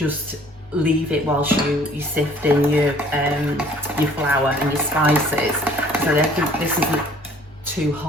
leave it whilst you sift in your flour and your spices. So I think this isn't too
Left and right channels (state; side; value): normal; both; correlation 0.55